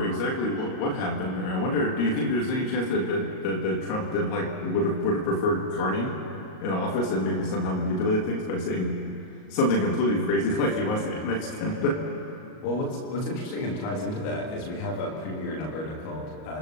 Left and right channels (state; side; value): late; right; 38 ms